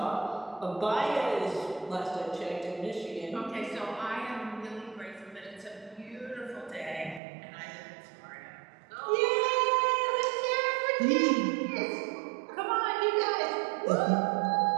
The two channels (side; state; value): left; drops out; at 7.2 s